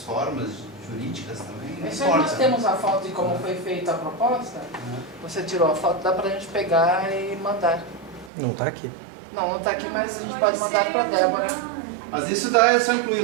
formas jurídicas também. Não Isso aí nós importa. temos a foto de como foi feita a proposta. Você tirou a foto, dá pra gente pegar e mandar. Não está aqui. Não está aqui, mas a gente pode mandar para Débora. Mas isso dá, é só incluir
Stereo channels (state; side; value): drops out; left; at 8.3 s